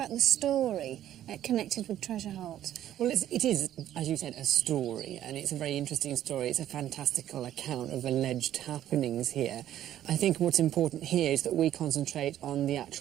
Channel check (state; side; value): quieter; left; 11.9 dB